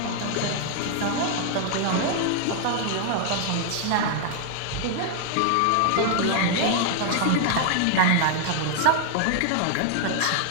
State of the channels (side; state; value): both; different; correlation 0.00